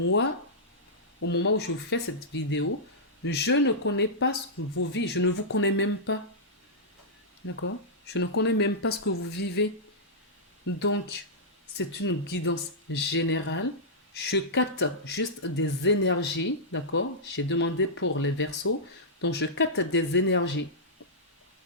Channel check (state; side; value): normal; both; correlation -0.12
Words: au moment où je fais cette vidéo, je ne connais pas ce que vous vivez, je ne vous connais même pas. D'accord? Je ne connais même pas ce que vous vivez. Donc, c'est une guidance générale. Je capte juste des énergies, d'accord? J'ai demandé pour les versos, donc je capte des énergies.